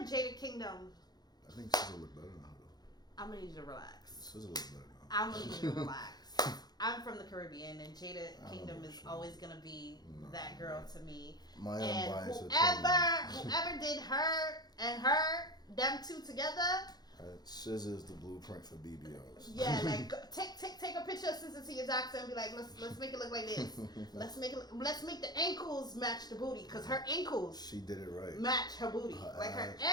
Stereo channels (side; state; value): right; late; 0.19 ms